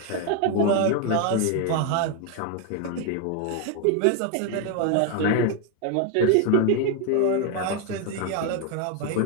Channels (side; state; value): both; different; correlation 0.01